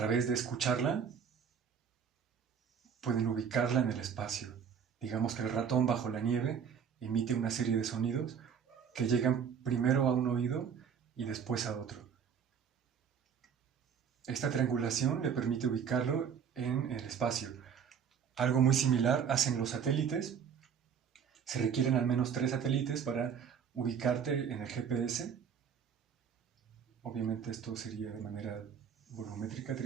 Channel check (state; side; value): quieter; left; 7.3 dB